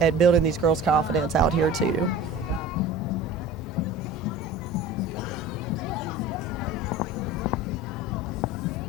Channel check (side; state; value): both; normal; correlation 0.38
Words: building these girls' confidence out here too.